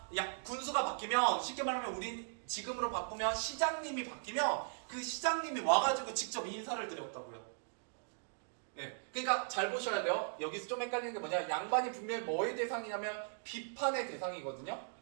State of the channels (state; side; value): silent; left; digital silence